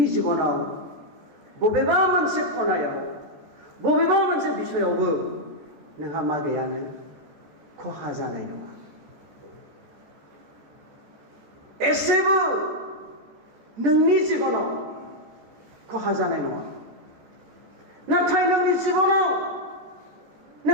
जिबनाव बबेबा मोनसे खनायाव बबेबा मोनसे बिसयावबो नोंहा मा गैयानो खहा जानाय नङा एसेबो नोंनि जिबनाव खहा जानाय नङा नाथाय नोंनि जिबनाव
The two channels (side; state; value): left; late; 14 ms